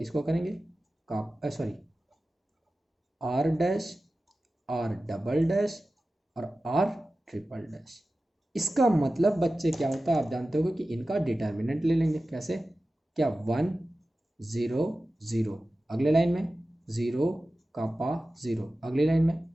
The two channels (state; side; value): normal; both; correlation 0.95